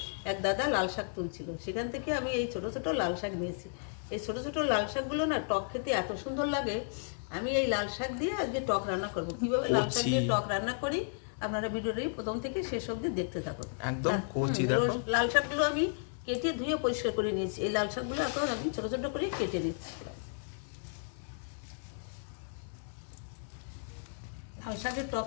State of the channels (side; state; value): right; silent; 55 dB below the other